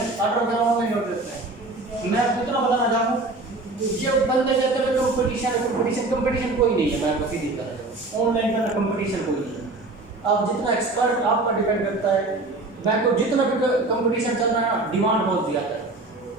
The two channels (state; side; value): quieter; left; 3.1 dB